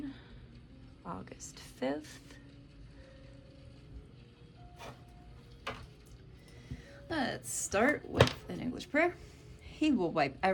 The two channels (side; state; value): both; identical; correlation 1.00